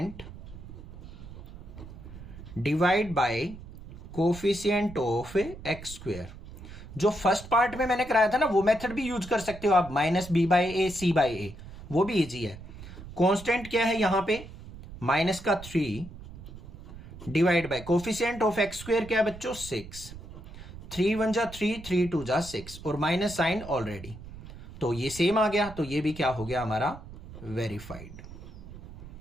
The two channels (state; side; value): noise; right; rumble, 14 dB below the sound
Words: divide by coefficient of x²। जो फर्स्ट पार्ट में मैंने कराया था ना, वो मेथड भी यूज कर सकते हो आप, -b/a c/a, वो भी इजी है। कांस्टेंट क्या है यहां पे -3 divide by coefficient of x² क्या है बच्चों 6, 3 1 जा 3, 3 2 जा 6 और माइनस साइन ऑलरेडी, तो ये सेम आ गया, तो ये भी क्या हो गया हमारा वेरीफाइड।